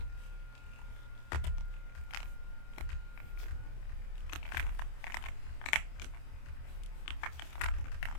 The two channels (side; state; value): right; late; 26 ms